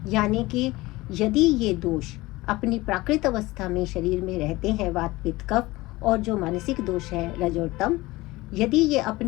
यानी कि यदि ये दोष अपनी प्राकृत अवस्था में शरीर में रहते हैं, वात पित्त कफ, और जो मानसिक दोष है रज और तम, यदि ये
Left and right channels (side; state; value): right; quieter; 20.1 dB